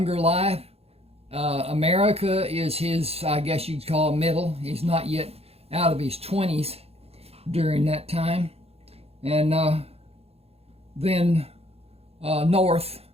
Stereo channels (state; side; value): late; left; 0.29 ms